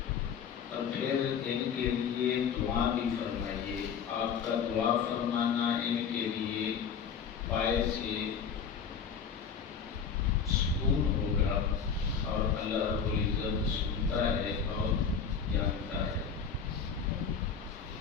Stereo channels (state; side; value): quieter; right; 6.7 dB